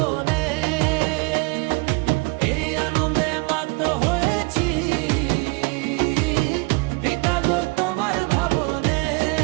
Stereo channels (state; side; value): quieter; left; 28.1 dB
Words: এই আনন্দে মাত হয়েছি পিতা গো তোমার ভাবনে।